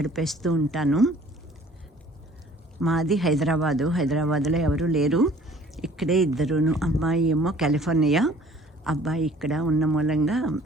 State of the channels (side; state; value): both; normal; correlation 0.53